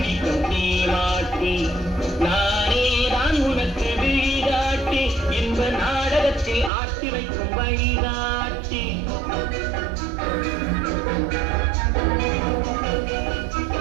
நீ மாட்டி, நானே தான் உனக்கு விழிகாட்டி, என்ப நாடகத்தில் ஆட்டி வைக்கும் வழிகாட்டி.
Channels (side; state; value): left; drops out; at 6.7 s